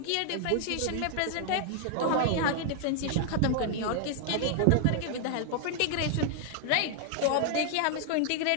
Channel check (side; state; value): both; different; correlation 0.00